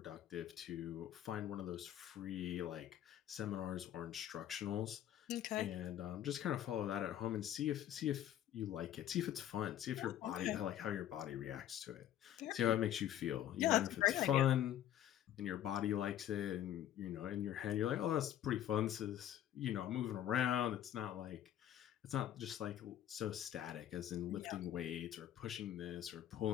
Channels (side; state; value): right; quieter; 11.6 dB